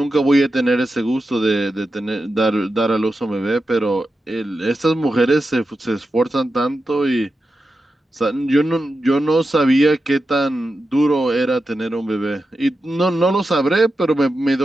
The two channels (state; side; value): normal; both; correlation 0.90